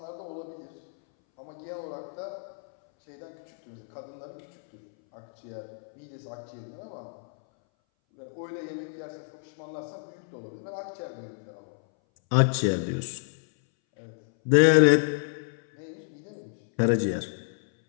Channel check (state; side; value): silent; right; 58 dB below the other